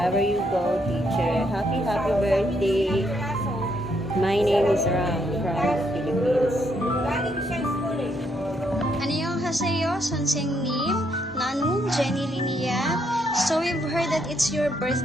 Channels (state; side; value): normal; both; correlation 0.74